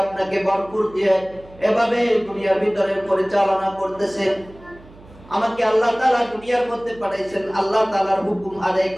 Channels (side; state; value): right; noise; hum, 23 dB below the sound